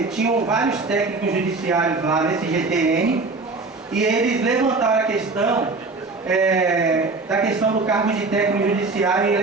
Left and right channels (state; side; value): quieter; left; 3.7 dB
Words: tinham vários técnicos judiciários lá nesse GTN, e eles levantaram a questão da questão do cargo de técnico judiciário e